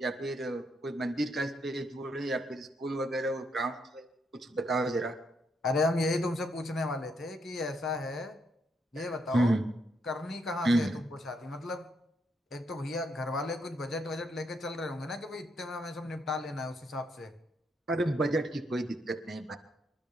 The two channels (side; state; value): both; normal; correlation 0.77